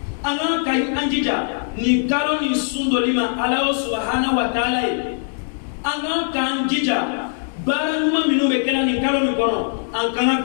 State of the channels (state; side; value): silent; right; 65 dB below the other